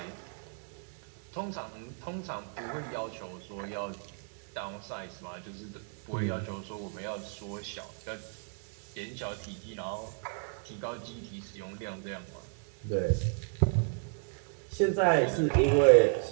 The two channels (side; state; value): left; silent; 56 dB below the other